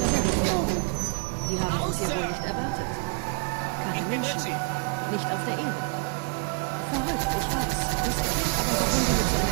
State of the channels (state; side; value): quieter; left; 34.7 dB